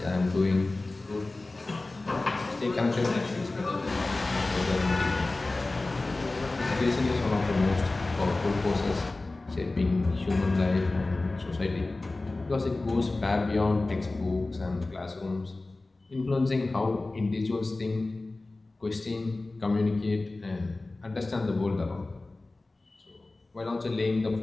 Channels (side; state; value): right; quieter; 3.1 dB